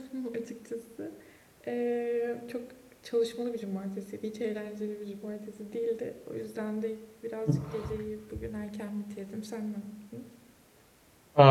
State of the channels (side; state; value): both; identical; correlation 1.00